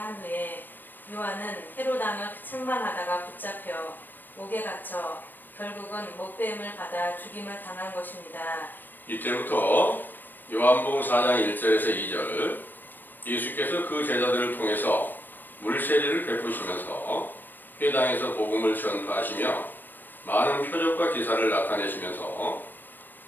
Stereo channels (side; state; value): right; late; 0.092 ms